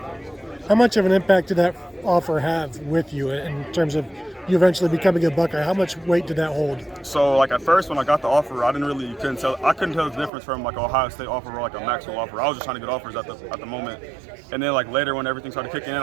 How much of an impact did that offer have with you in terms of you eventually becoming a Buckeye? How much weight did that hold? So like at first when I got the offer, I couldn't tell the difference from like an Ohio State offer or like a Maxwell offer. I was just trying to get offers at the moment. And then like later when everything started kicking in,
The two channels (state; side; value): drops out; left; at 10.3 s